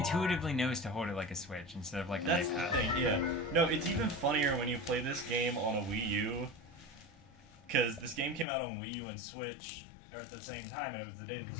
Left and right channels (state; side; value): drops out; right; at 8.5 s